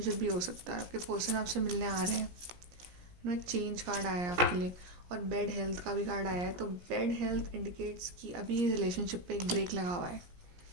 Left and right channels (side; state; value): left; late; 17 ms